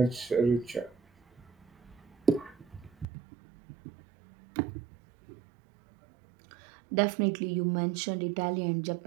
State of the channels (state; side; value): drops out; left; at 3.1 s